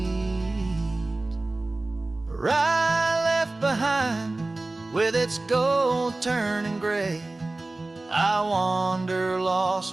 Rye left behind with its gold turning gray. I wander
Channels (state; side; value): quieter; left; 3.0 dB